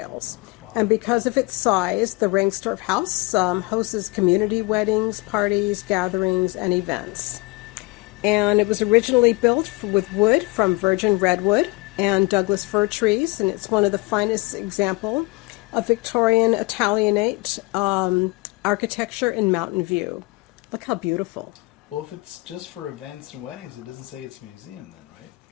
Wow. And because of its size, the Rangstorf house hosts community weddings, parties, gatherings, and events. And it was originally built with wood from virgin redwood and Douglas fir trees, and it's one of the finest example of Victorian Italianate architecture in Mountain View. Look how beautiful. Well, if it's just for events and weddings, it doesn't say it's a museum then, right?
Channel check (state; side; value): quieter; right; 24.9 dB